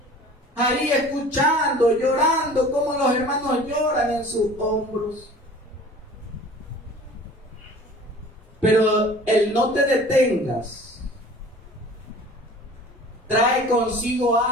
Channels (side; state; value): both; normal; correlation 0.44